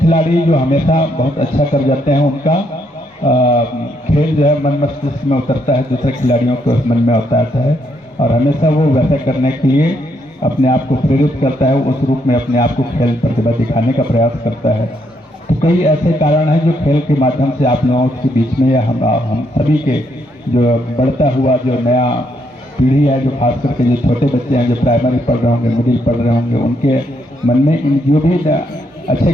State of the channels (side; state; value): both; normal; correlation 0.75